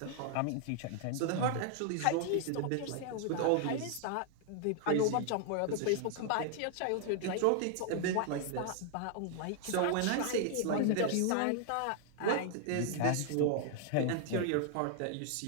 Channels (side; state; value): both; different; correlation 0.00